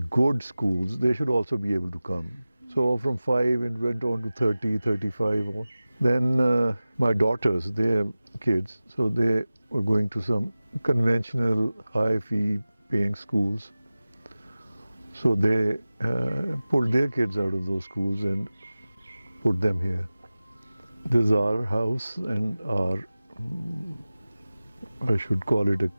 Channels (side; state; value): both; inverted; correlation -0.97